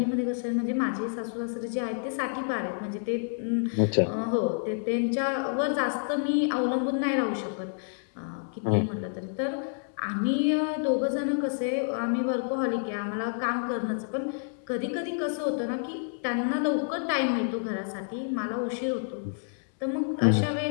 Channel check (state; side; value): silent; right; digital silence